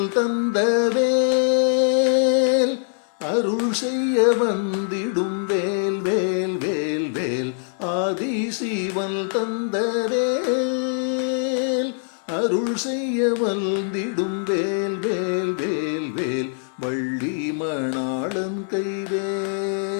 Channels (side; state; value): right; silent; digital silence